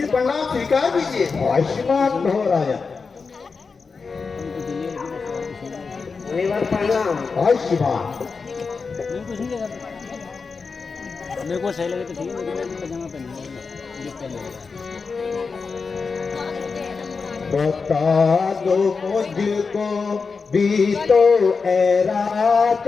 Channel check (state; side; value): quieter; right; 4.9 dB